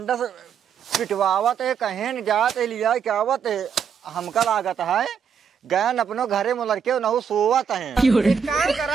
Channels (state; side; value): quieter; left; 7.0 dB